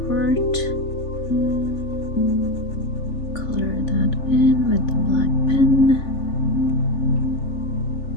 part, color that in with the black pen.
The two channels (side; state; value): right; late; 3.4 ms